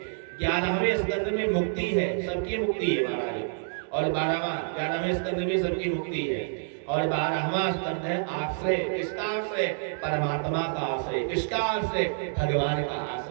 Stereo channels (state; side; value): silent; left; digital silence